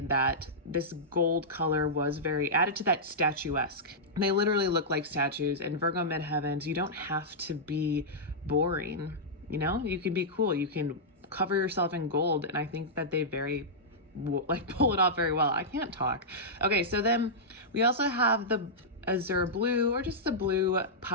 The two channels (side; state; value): both; normal; correlation -0.11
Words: that this gold color was very added to that statuesque. They literally look like statues, and Virgo midheavens, you don't have to be boring, you know? You can be cool, you can cover yourself in gold, and I think that they pull it off very well. I can't talk. Okay, so then we also have the azure blue, or just the blue